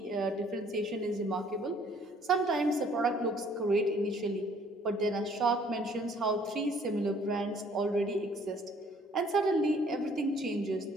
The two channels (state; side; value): normal; both; correlation 0.59